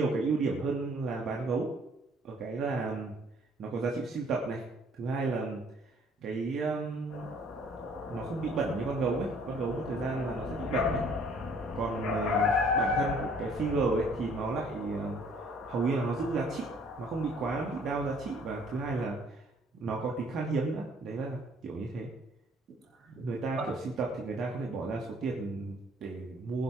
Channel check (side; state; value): both; normal; correlation 0.59